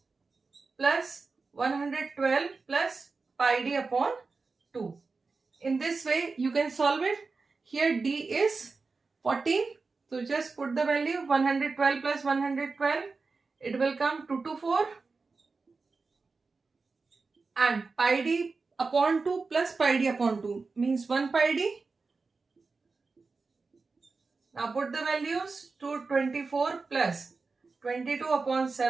plus 112 plus pi d upon 2. In this way you can solve it. Here d is 14. So just put the value 112 plus 112. It will come 224. And pi d upon 2 plus pi d upon 2 means 1 pi d. Now put the values. 224 plus 22 upon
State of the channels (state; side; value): quieter; left; 4.2 dB